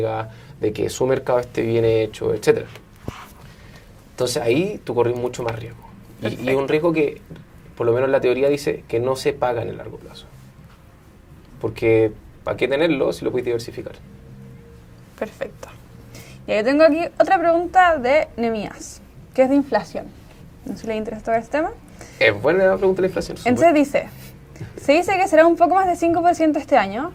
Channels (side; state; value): both; identical; correlation 1.00